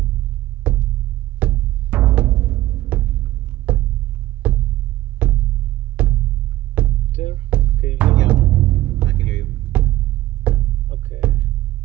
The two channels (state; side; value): quieter; left; 15.9 dB